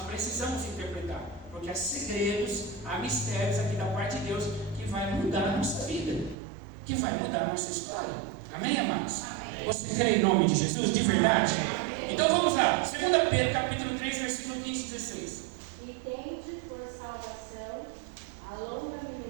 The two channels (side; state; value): left; drops out; at 6.4 s